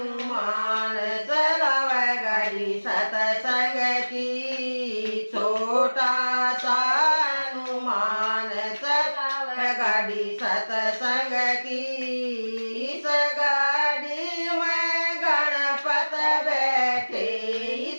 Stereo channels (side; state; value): both; inverted; correlation -1.00